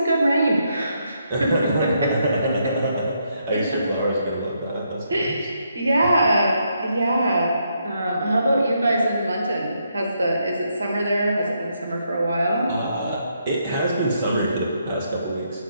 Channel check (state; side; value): inverted; both; correlation -0.77